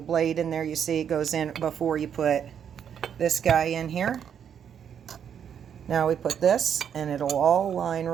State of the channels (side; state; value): left; quieter; 8.3 dB